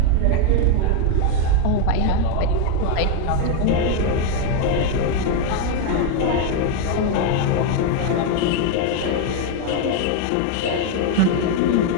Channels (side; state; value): both; different; correlation 0.01